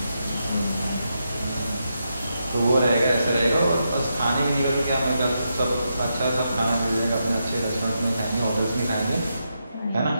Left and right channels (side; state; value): both; inverted; correlation -0.84